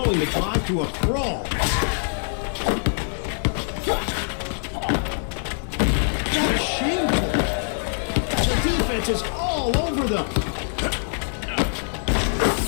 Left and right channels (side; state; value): right; silent; 63 dB below the other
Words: the drive to a crawl. That is shameful. The defense is all over them.